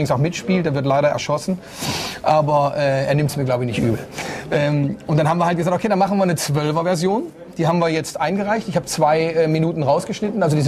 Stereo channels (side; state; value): both; identical; correlation 1.00